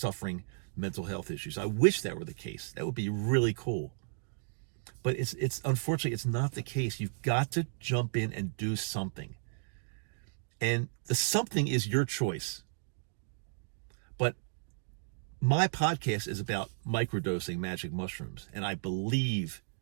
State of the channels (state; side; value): silent; left; digital silence